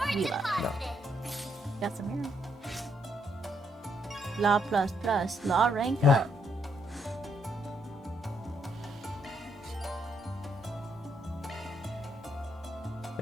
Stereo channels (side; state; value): both; normal; correlation 0.74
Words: We love. No. Got some here. Law plus plus. Law rank up.